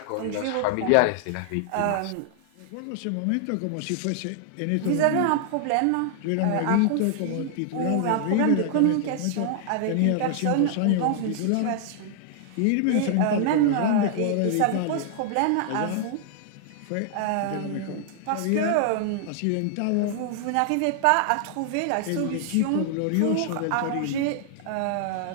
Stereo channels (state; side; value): different; both; correlation 0.00